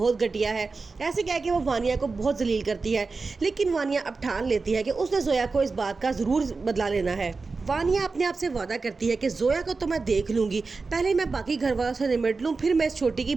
घटिया है। ऐसे कह के वो वानिया को बहुत जलील करती है, लेकिन वानिया अब ठान लेती है कि उसने जोया को इस बात का ज़रूर बदला लेना है। वानिया अपने आप से वादा करती है कि जोया को तो मैं देख लूंगी, पहले मैं बाकी घर वालों से निपट लूँ, फिर मैं इस छोटी की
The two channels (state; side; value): quieter; left; 4.2 dB